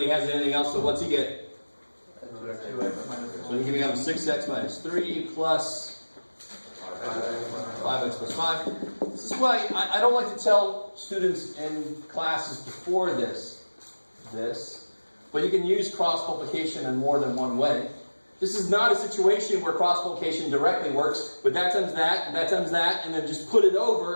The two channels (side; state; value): both; inverted; correlation -1.00